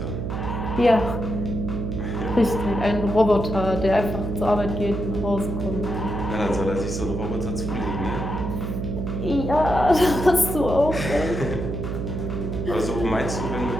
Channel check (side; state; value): right; noise; hum, 3 dB below the sound